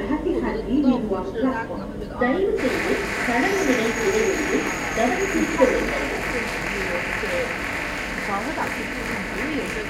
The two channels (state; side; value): identical; both; correlation 1.00